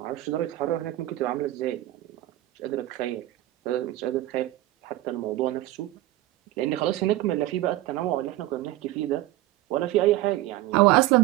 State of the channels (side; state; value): left; quieter; 16.1 dB